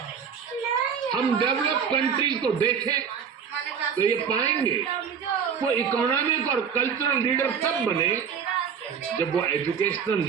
हम डेवलप कंट्रीज को देखें तो ये पाएंगे वो इकोनॉमिक और कल्चरल लीडर तब बने जब वो एजुकेशनल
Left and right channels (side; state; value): left; quieter; 7.0 dB